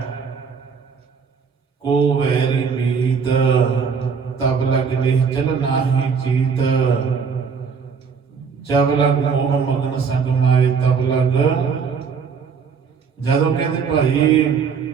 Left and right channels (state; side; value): quieter; left; 5.9 dB